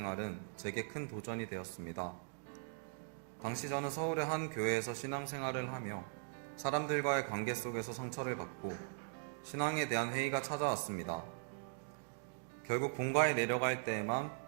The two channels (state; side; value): silent; left; digital silence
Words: 제게 큰 도전이 되었습니다. 당시 저는 서울의 한 교회에서 신앙생활을 하며 사람들과의 관계 속에서 상처를 받고 신앙에 대한 회의가 찾아왔습니다. 결국 본가에 내려갈 때에만